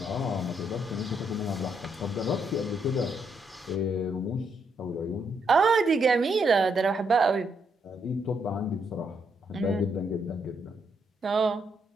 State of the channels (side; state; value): both; normal; correlation 0.76